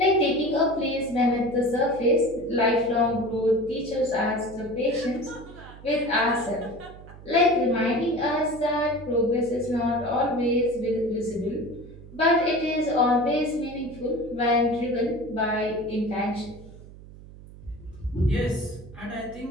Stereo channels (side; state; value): right; noise; hum, 18 dB below the sound